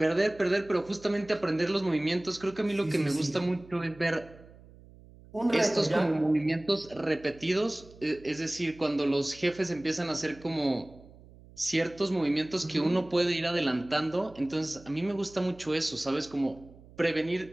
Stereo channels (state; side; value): noise; right; hum, 22 dB below the sound